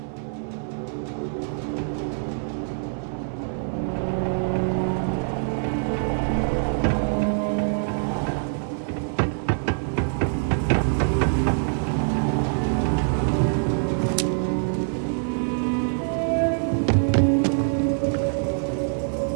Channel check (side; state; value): left; silent; 62 dB below the other